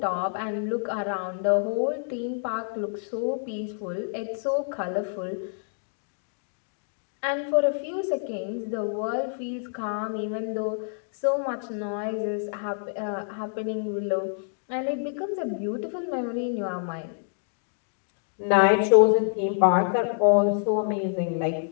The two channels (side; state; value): right; silent; digital silence